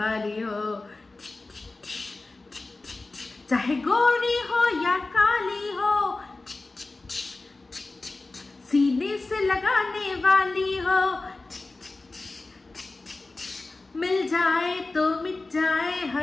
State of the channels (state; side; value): quieter; right; 3.3 dB